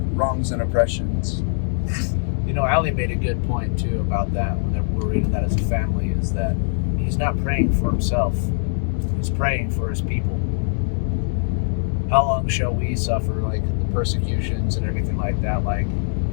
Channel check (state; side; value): silent; right; digital silence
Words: oppressions? You know, Ali made a good point too about that when we're reading that as a family, is that he's not praying for himself. He's praying for his people. How long shall we suffer, like, the persecutions and everything like that? Like,